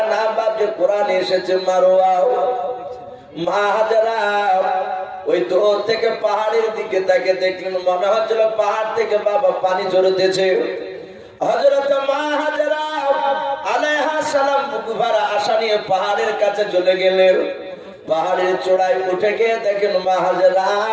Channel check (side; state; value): both; identical; correlation 1.00